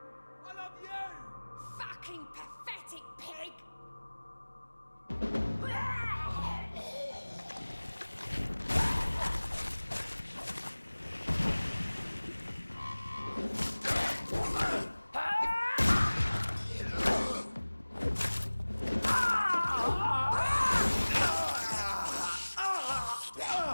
I love you! Fucking pathetic pig!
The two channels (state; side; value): inverted; both; correlation -1.00